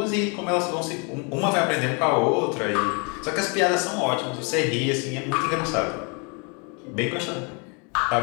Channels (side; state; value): right; quieter; 33.7 dB